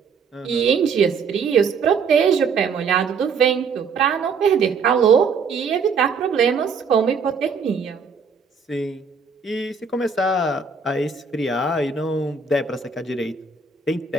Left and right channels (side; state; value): left; quieter; 5.3 dB